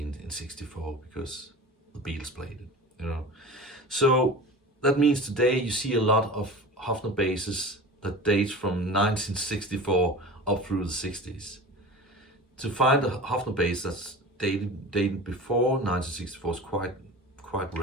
64 because the Beatles played it. You know, so that means today you see a lot of Hofner basses that date from 1964 up through the 60s. To find a Hofner bass that's dated before 1964 is quite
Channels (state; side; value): normal; both; correlation 0.35